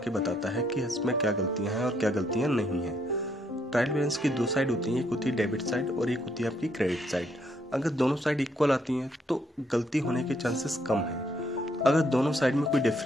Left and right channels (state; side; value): normal; both; correlation 0.72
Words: बताता है कि इसमें क्या गलतियां हैं और क्या गलतियां नहीं हैं। ट्रायल बैलेंस की 2 साइड होती हैं, एक होती है डेबिट साइड और एक होती है आपकी क्रेडिट साइड। अगर दोनों साइड इक्वल आती हैं तो गलती होने के चांसेस कम हैं। अगर दोनों साइड में कोई